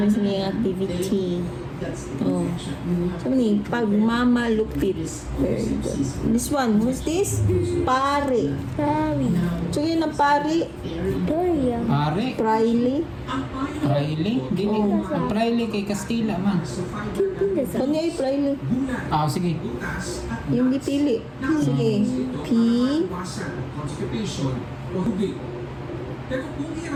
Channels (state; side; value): identical; both; correlation 1.00